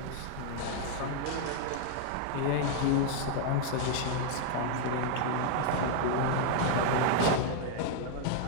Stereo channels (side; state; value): both; different; correlation 0.00